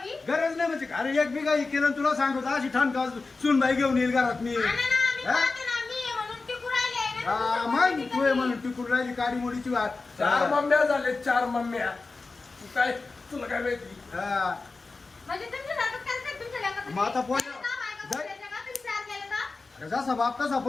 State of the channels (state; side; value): quieter; right; 3.8 dB